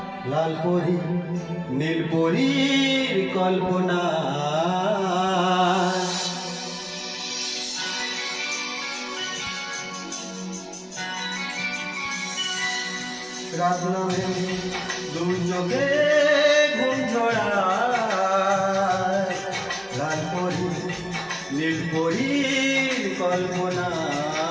লাল পরি নীল পরীর কল্পনা। রাত নামে দু চোখে ঘুম ছড়ায়, লাল পরি নীল পরীর কল্পনা।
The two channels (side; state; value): both; identical; correlation 1.00